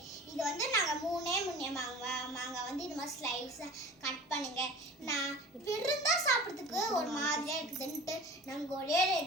இது வந்து நாங்கள் மூணே மாங்காய் வந்து இது மாதிரி ஸ்லைஸாக கட் பண்ணுங்க. நான் விருந்தா சாப்பிட்றதுக்கு ஒரு மாதிரியாக இருக்குதுன்ட்டு நாங்கள் ஒரே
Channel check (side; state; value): both; normal; correlation 0.40